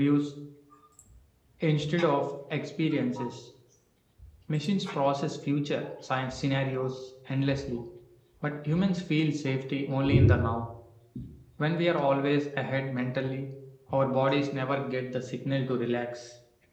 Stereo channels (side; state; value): both; identical; correlation 1.00